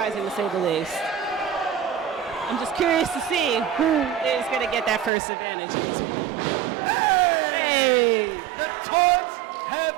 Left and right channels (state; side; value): drops out; left; at 5.1 s